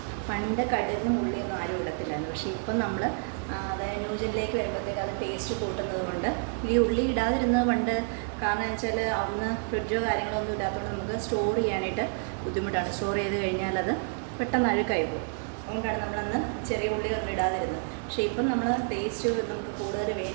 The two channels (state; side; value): silent; left; 59 dB below the other